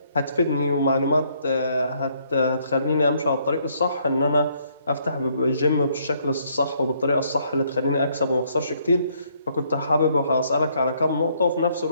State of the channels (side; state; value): both; inverted; correlation -0.69